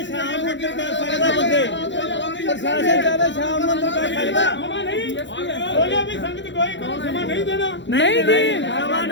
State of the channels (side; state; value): right; late; 0.53 ms